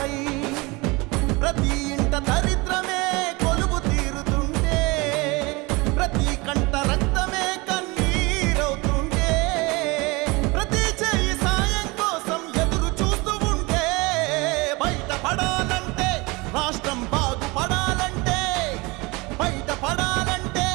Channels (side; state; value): left; quieter; 25.0 dB